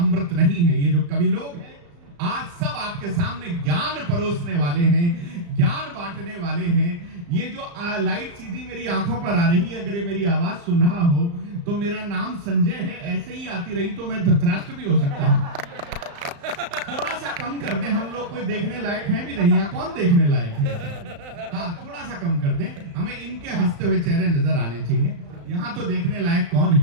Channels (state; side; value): late; left; 35 ms